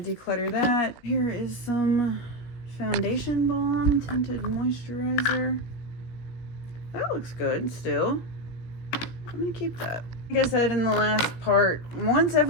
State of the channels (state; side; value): late; right; 17 ms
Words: declutter that. Here is some foundation balm tinted moisturizer. That looks good still. I'm gonna keep that. Like I said in the last part, once